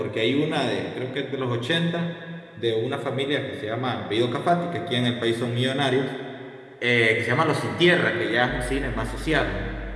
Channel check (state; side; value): identical; both; correlation 1.00